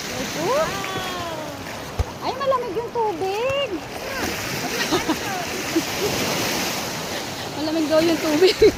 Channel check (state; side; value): identical; both; correlation 1.00